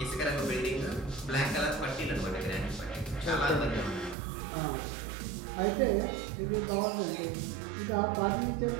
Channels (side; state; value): left; drops out; at 4.2 s